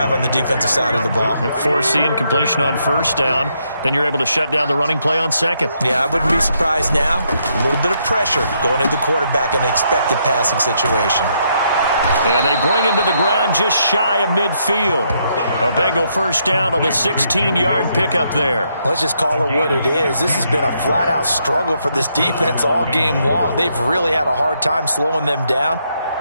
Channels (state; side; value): inverted; both; correlation -0.76